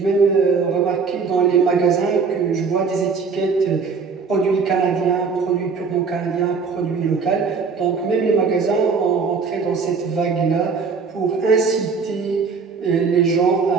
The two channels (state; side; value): quieter; left; 5.2 dB